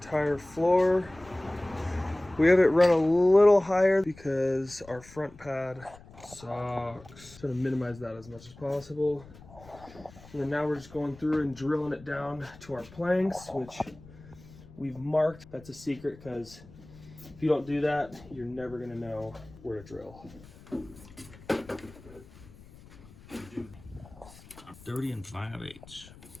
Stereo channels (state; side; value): noise; left; rumble, 21 dB below the sound